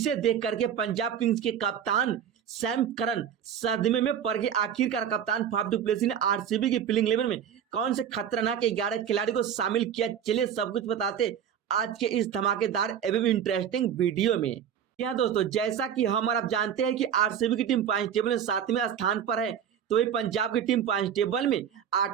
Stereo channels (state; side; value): quieter; left; 8.8 dB